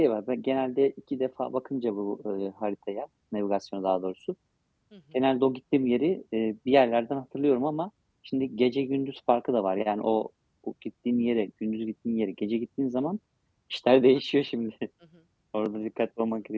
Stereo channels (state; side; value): identical; both; correlation 1.00